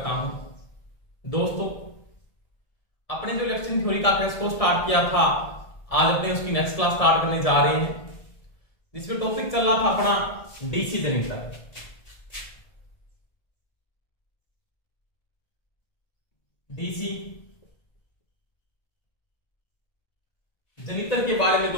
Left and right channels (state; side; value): late; right; 1.7 ms